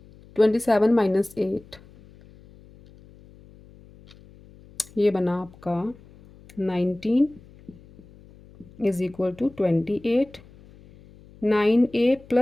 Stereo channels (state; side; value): noise; left; hum, 24 dB below the sound